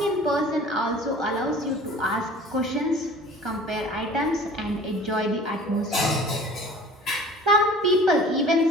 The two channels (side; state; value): both; normal; correlation 0.45